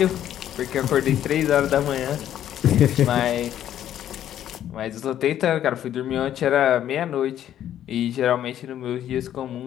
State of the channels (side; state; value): right; quieter; 11.1 dB